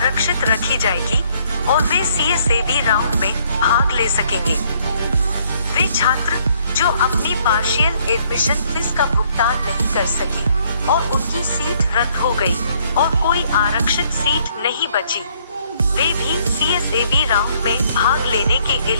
रखी जाएगी और वे CSAB राउंड में भाग ले सकेंगे। वे छात्र जो अपनी पार्शियल एडमिशन फीस का भुगतान नहीं कर सकी और उनकी सीट रद्द हो गई और कोई आरक्षित सीट नहीं बची, वे भी CSAB राउंड में भाग लेने के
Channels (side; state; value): both; inverted; correlation -0.65